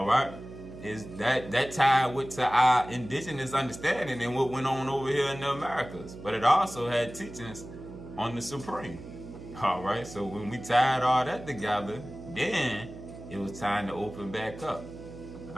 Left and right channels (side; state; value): right; noise; hum, 14 dB below the sound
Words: right? Is that tied with to our indigenous understanding and what went on over here in the Americas. But it also had teachings on the Supreme. All right? So when we tied all that together, then it was time to open back up.